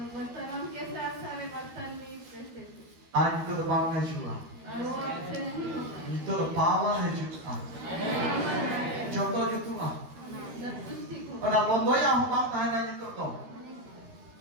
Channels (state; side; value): late; left; 13 ms